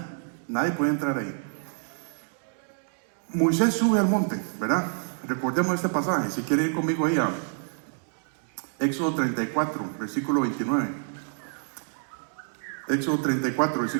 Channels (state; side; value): silent; left; 60 dB below the other